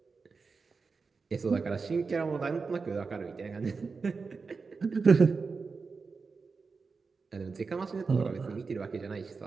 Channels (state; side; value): quieter; left; 4.7 dB